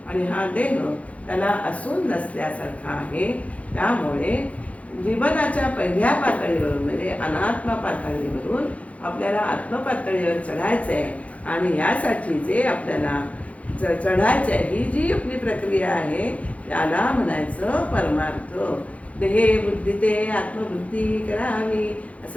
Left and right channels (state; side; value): late; right; 0.066 ms